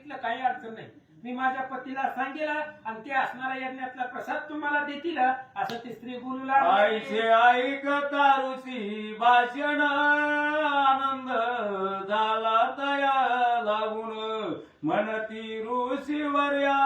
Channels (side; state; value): both; identical; correlation 1.00